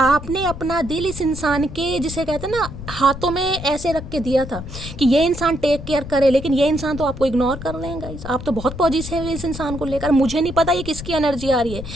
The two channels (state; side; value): noise; left; rumble, 10 dB below the sound